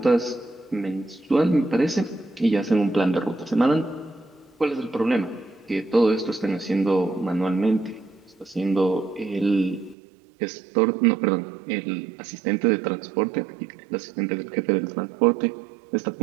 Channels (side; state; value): left; drops out; at 10.0 s